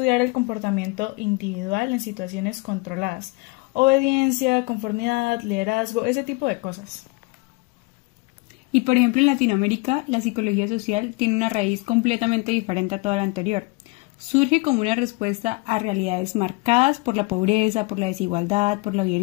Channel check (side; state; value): right; quieter; 25.8 dB